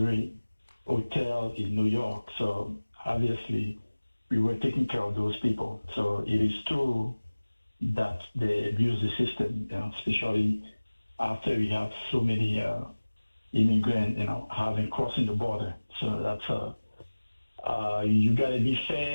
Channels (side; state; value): both; inverted; correlation -1.00